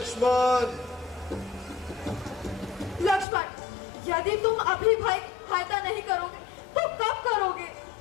लक्ष्मण, यदि तुम अभी भाई सहायता नहीं करोगे तो कब करोगे?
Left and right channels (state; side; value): drops out; right; at 3.2 s